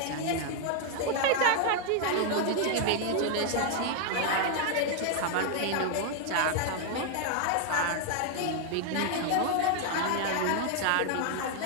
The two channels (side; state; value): both; different; correlation 0.00